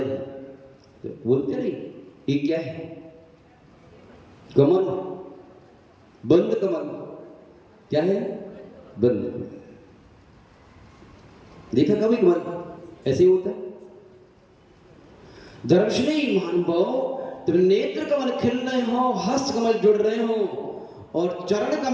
हैं, तो बोलते नहीं ये क्या है? कमल, बंद कमल। क्या है? बंद कमल। देखा कभी कमल ऐसे ही होता है? दर्शनी महानुभाव, जब नेत्र कमल खिल रहे हो, हस्त कमल जुड़ रहे हो, और चरण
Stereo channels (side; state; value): both; identical; correlation 1.00